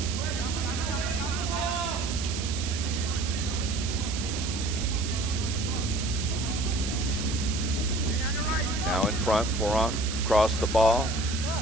Now in front, Foran across the ball.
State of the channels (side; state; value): right; noise; hiss, 7 dB below the sound